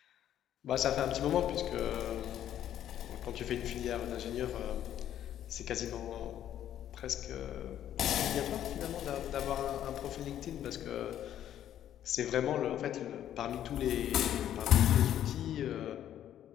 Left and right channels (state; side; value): quieter; right; 11.1 dB